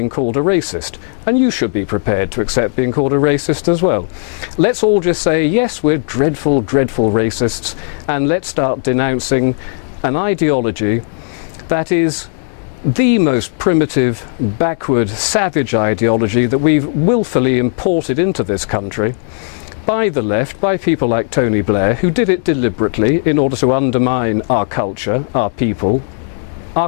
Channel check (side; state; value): right; silent; 70 dB below the other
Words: called a racist. And you should be prepared to accept being called a racist as well. Let's all just say, yes, we're dreadful, dreadful racists, and let's start denouncing an ideology that is the most primitive, backward, savage ideology that we've willfully imported into this country by the left, by people like Tony Blair, who did it deliberately in order to undermine our culture, our people, our